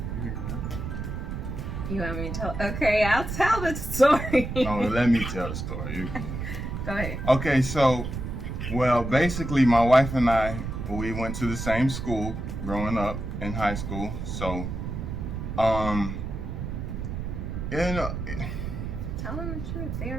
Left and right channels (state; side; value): noise; right; rumble, 5 dB below the sound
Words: You want me to tell? Okay, I'll tell the story. No, let me tell the story. You can. Go ahead. Okay, so, well, basically, my wife and I, we went to the same school growing up in high school. So, Tell them the truth. They